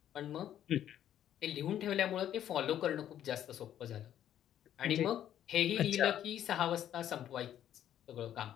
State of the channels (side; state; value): right; quieter; 10.9 dB